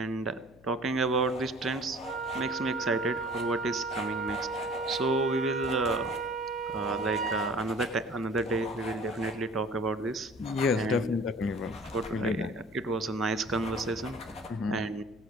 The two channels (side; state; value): left; noise; hum, 26 dB below the sound